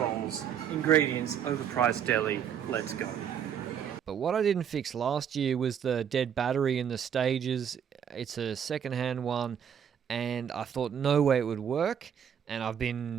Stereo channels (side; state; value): left; quieter; 8.4 dB